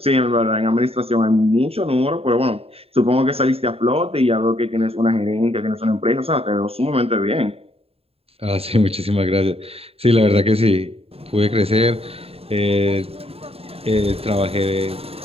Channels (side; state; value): left; late; 0.28 ms